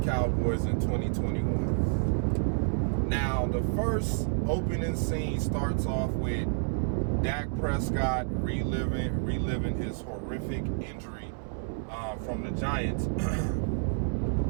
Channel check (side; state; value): left; silent; 58 dB below the other